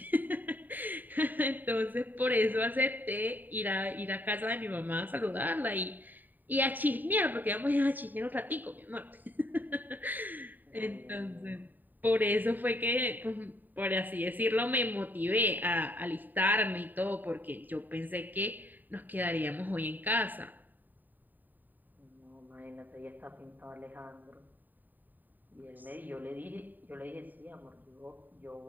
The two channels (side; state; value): left; late; 0.088 ms